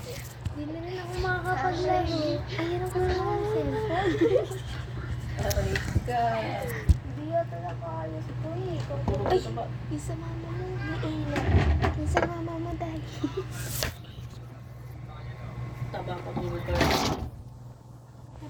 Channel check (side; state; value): both; identical; correlation 1.00